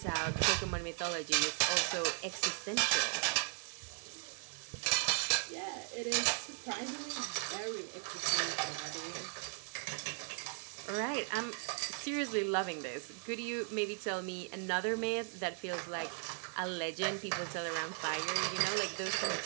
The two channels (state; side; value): silent; left; 53 dB below the other